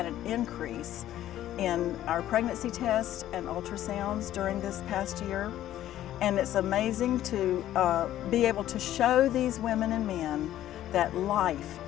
an increase in our pregnancy tests and ultrasounds during this past year. And it's amazing to be able to show these women and men that life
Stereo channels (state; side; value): quieter; right; 12.8 dB